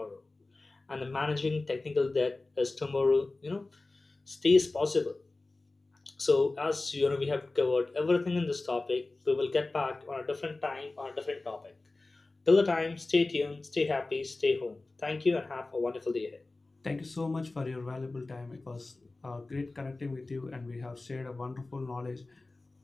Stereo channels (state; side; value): quieter; right; 3.2 dB